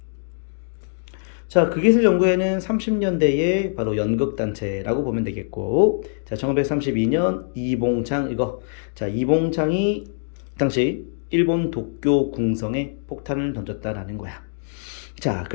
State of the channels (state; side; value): silent; right; digital silence